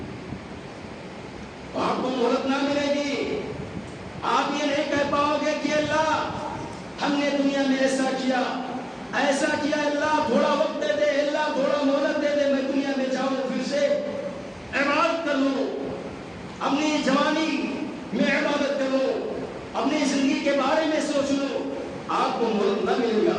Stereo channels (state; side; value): identical; both; correlation 1.00